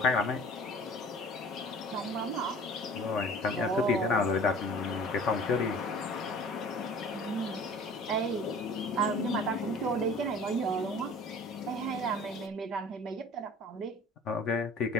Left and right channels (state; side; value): normal; both; correlation 0.45